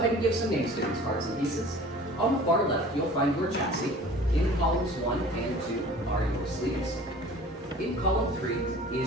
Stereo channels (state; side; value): normal; both; correlation 0.45